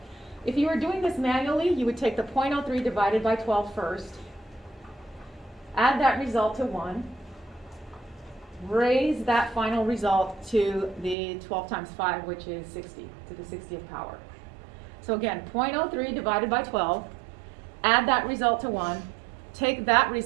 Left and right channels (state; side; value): drops out; left; at 11.2 s